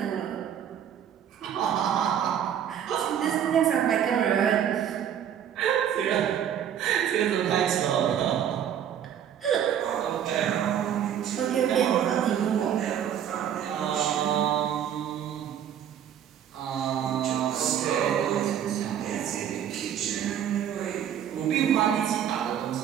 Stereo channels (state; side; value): quieter; left; 9.5 dB